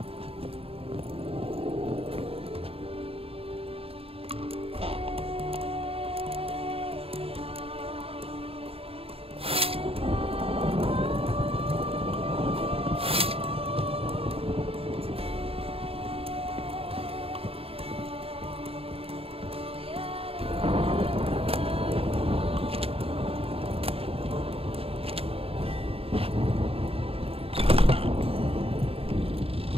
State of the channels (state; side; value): late; left; 0.28 ms